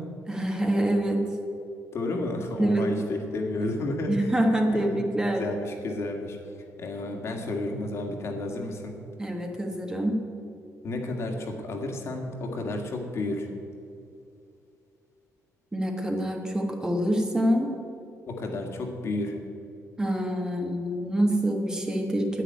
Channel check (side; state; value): both; normal; correlation 0.85